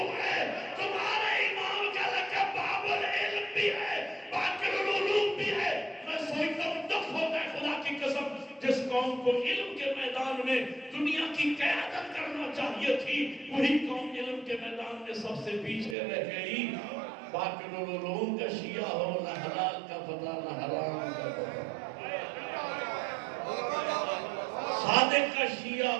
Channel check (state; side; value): drops out; left; at 16.0 s